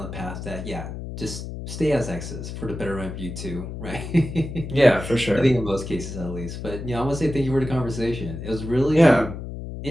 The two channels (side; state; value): left; noise; hum, 8 dB below the sound